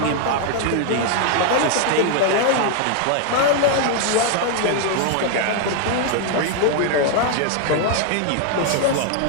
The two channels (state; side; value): different; both; correlation 0.00